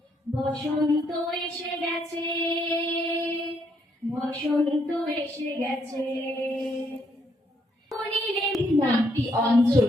বসন্ত এসে গেছে, বসন্ত এসে গেছে। নামটি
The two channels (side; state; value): both; normal; correlation 0.73